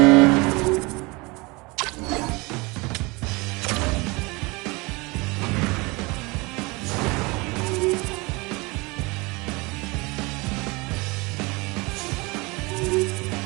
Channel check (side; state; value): left; quieter; 25.5 dB